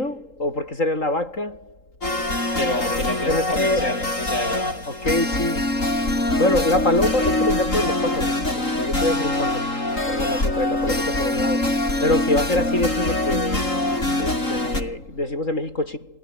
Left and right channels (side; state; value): right; late; 3.8 ms